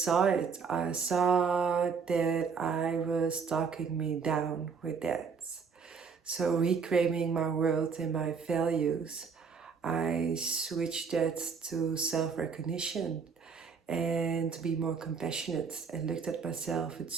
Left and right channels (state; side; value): quieter; left; 5.8 dB